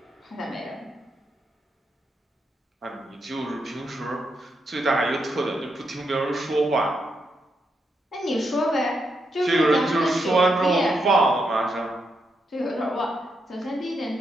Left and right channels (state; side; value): normal; both; correlation 0.81